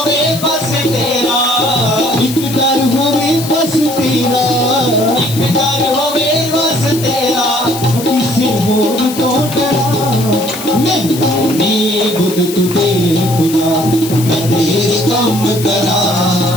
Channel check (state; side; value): noise; left; hiss, 10 dB below the sound